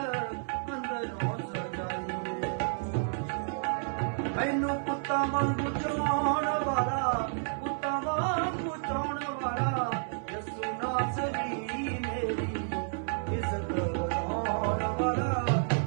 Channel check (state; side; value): silent; left; 57 dB below the other